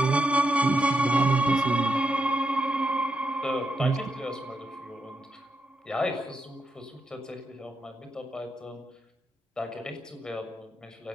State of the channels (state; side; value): normal; both; correlation 0.84